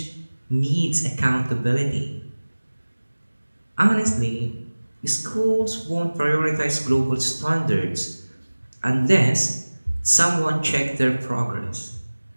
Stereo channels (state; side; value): inverted; both; correlation -1.00